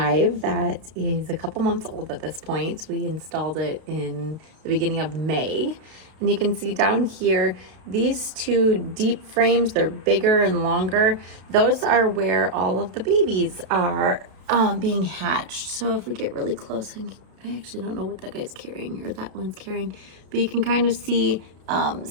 that is a couple months old at this point. We installed it in the beginning of May. And you can see down here, these two deep frames, they're bigger and longer. Those are where all of the babies are being hatched. So if we get really close, I actually don't know what that guy's carrying or that one's carrying, but you can kind of see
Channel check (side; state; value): left; late; 32 ms